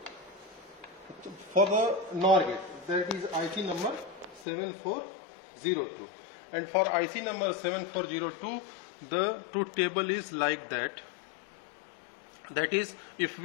For the NOR gate, that is IC number 7402. And for IC number 7402, the truth table is like that. That is, if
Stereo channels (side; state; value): right; drops out; at 4.5 s